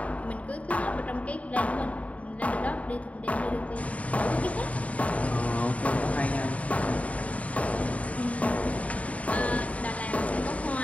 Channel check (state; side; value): late; right; 0.067 ms